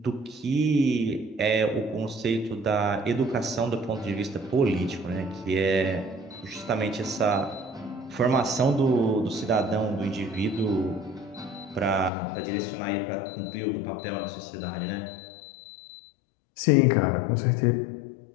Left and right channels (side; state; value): right; drops out; at 12.1 s